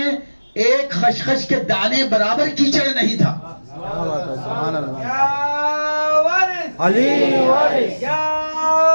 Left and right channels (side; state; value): both; inverted; correlation -1.00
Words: एक खसखस के दाने बराबर कीचड़ नहीं था। क्या बात है, सुभान अल्लाह। या वारिस, अली वारिस, या